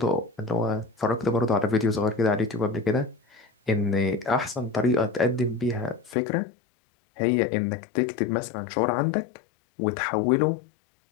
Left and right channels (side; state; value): right; drops out; at 6.2 s